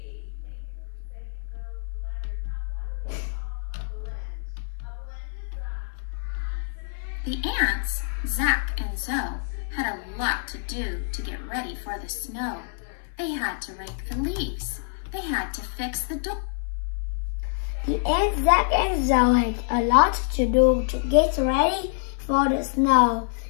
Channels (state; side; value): silent; right; 59 dB below the other